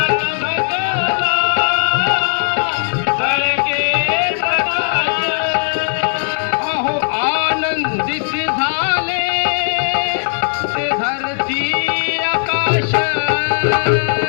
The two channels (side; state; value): right; silent; 67 dB below the other